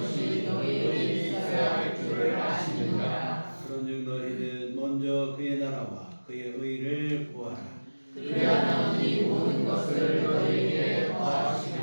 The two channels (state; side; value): inverted; both; correlation -1.00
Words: 너희에게 있어야 할 줄을 아시느니라. 그런즉 너희는 먼저 그의 나라와 그의 의를 구하라. 그리하면 이 모든 것을 너희에게